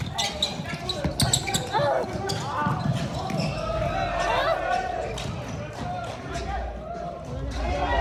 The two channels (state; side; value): identical; both; correlation 1.00